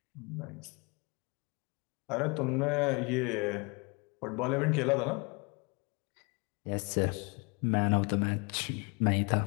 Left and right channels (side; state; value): right; quieter; 29.9 dB